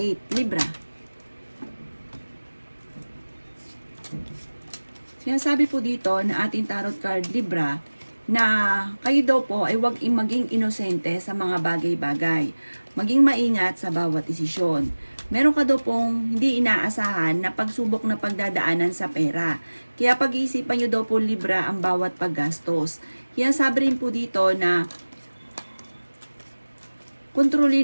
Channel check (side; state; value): both; inverted; correlation -1.00